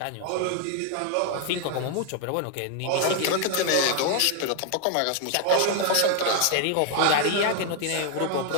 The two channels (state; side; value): different; both; correlation 0.00